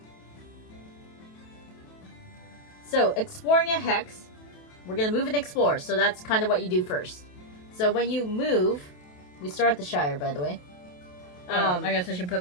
So, exploring a hex, we're going to move and explore. So that's kind of what you do first. So when you move, we start at the Shire, by the way. I guess I should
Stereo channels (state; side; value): late; right; 28 ms